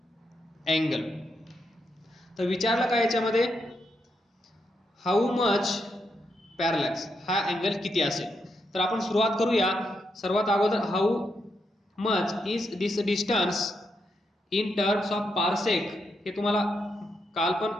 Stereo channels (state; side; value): normal; both; correlation 0.81